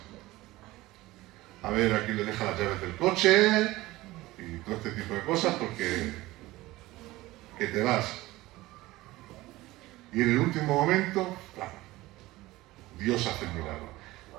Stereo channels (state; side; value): quieter; left; 18.6 dB